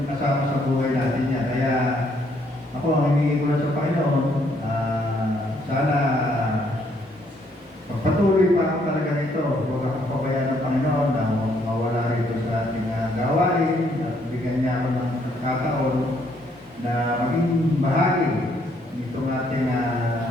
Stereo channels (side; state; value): both; normal; correlation 0.69